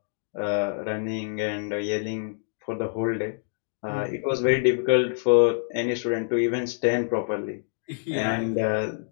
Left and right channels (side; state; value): right; silent; digital silence